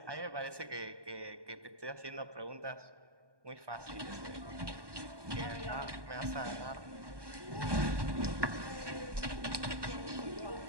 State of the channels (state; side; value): late; left; 1.2 ms